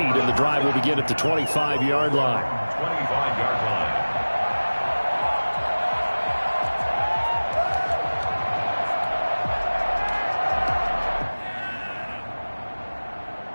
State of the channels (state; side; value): inverted; both; correlation -1.00